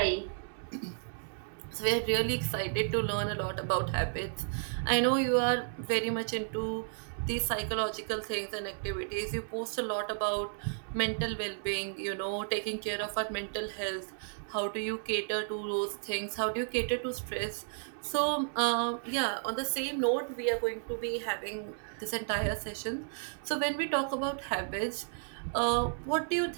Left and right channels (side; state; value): left; silent; 56 dB below the other